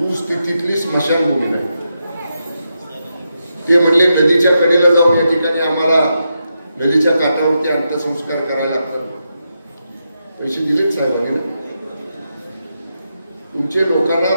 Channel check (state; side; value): inverted; both; correlation -0.85